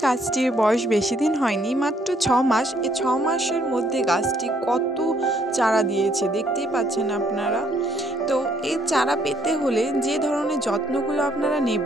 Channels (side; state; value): both; normal; correlation 0.67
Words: গাছটির বয়স বেশি দিন হয়নি, মাত্র 6 মাস। এই 6 মাসের মধ্যে গাছটি কত চারা দিয়েছে দেখতেই পাচ্ছেন আপনারা। তো এই চারা পেতে হলে যে ধরনের যত্নগুলো আপনারা